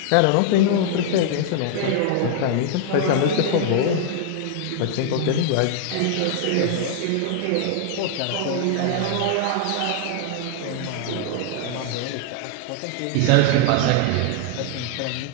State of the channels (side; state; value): both; different; correlation 0.00